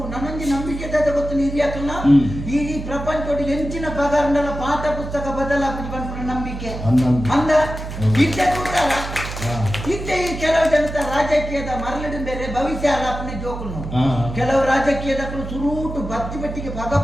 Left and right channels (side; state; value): right; noise; hum, 8 dB below the sound